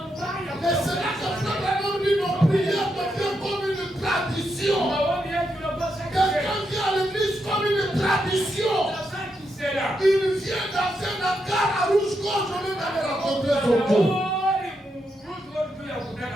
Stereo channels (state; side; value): normal; both; correlation 0.82